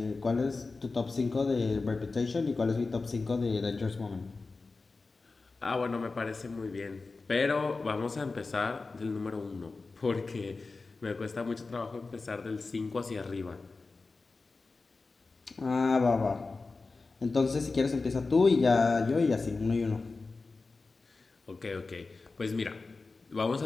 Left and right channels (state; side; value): quieter; right; 3.9 dB